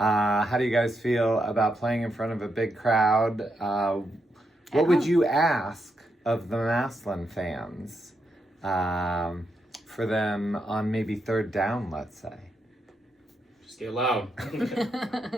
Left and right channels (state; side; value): normal; both; correlation 0.82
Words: do you guys feel about playing in front of a big crowd? What would you ask of the Massillon fans for them on maybe third down, let's say? Just get loud.